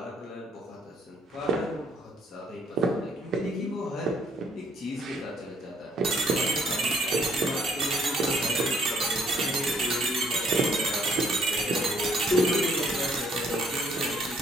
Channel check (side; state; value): both; normal; correlation 0.65